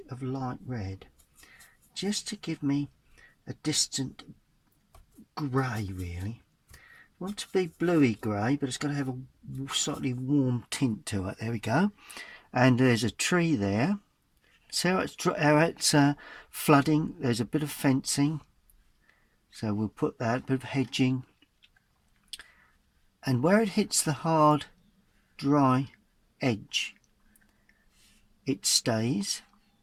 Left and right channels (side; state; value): both; identical; correlation 1.00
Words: of light red, just to give me a distant grey really. I want it to be bluey grey, but it's got to have a slightly warm tint to it. There we go. And there's a tree there. See how it's flooding. There's a bit of fencing, so we'll put that, bit of hedging. And where it hits the hard, dry edge, it stays.